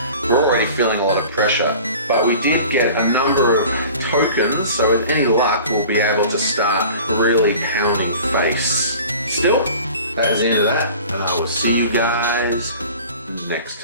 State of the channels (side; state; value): both; inverted; correlation -0.42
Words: we're already feeling a lot of pressure. But we did get a number of tokens, so with any luck, we'll be able to start really pounding face. Still, that is the end of that, and I will see you guys next